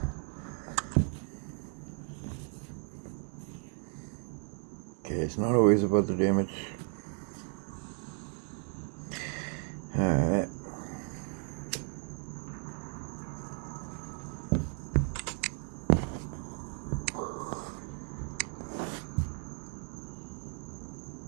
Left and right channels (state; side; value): quieter; left; 39.2 dB